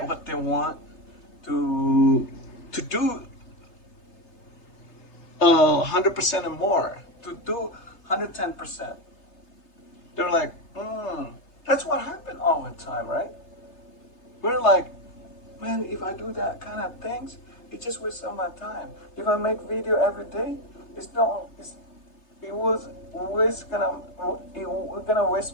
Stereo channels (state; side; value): late; right; 3.3 ms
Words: what they want, to do 100% and more, to do 110%. They're like, that's what happened all the time, right? We're like, man, if I do that kind of things, it just wastes all my time. If I make video every day, we're gonna